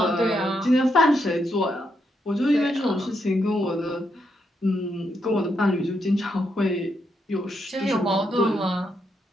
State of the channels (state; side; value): normal; both; correlation 0.80